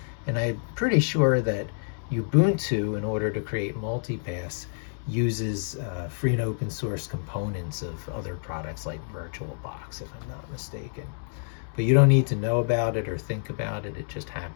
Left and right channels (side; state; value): right; silent; digital silence